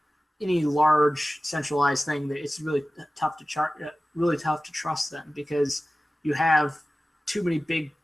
any large centralized thing that it's really tough to really tough to trust them because you have too many big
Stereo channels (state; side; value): normal; both; correlation 0.96